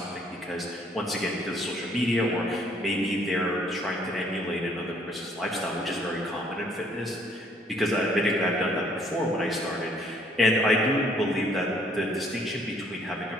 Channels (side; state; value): both; normal; correlation 0.64